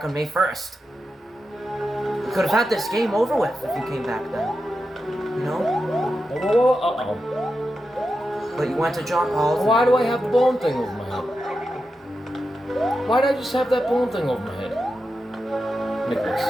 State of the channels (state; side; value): normal; both; correlation 0.89